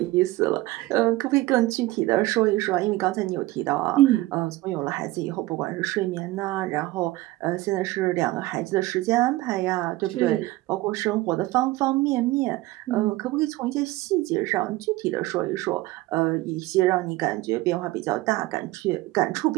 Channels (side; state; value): left; quieter; 18.8 dB